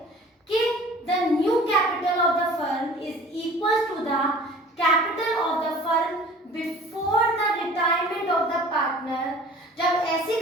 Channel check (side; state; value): both; normal; correlation 0.46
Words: कि the new capital of the firm is equal to the capital of the firm before the retirement of the partner, जब ऐसी